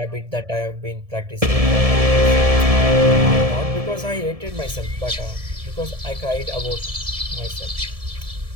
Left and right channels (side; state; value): left; late; 1.7 ms